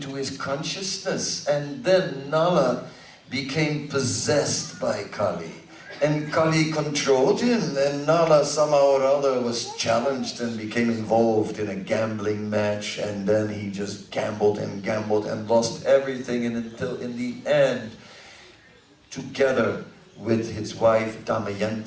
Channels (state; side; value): identical; both; correlation 1.00